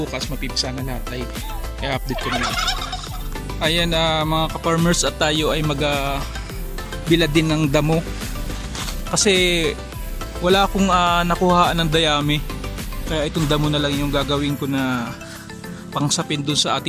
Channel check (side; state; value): both; identical; correlation 1.00